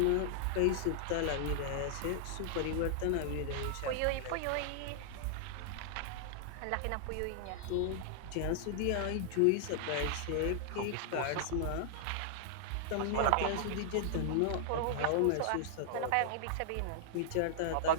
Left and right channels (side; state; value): both; different; correlation -0.01